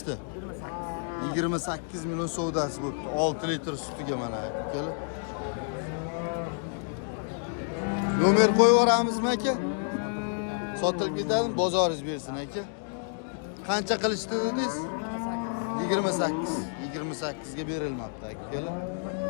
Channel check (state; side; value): silent; right; 58 dB below the other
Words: 28 million savdosi bo'libdi. 6 litr sutiga mana akalar. Nomer qo'yib yuboramizmi aka? Sotilib ketadimi? Bozoringiz bersin aka. Qancha qilishdi dedingiz? 28. 28 ga berilmoqda akalar.